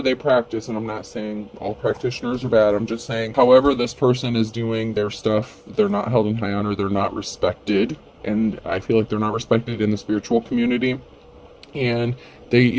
they practice, and I'm not saying all practitioners are bad, I'm just saying however this person is doing their stuff, they're not held in high honor, they're not respected. And I feel like they're not respected in the spiritual community. And they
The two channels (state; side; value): identical; both; correlation 1.00